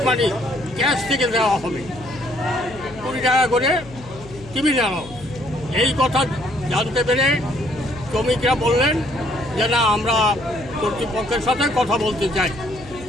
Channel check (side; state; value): left; noise; hum, 18 dB below the sound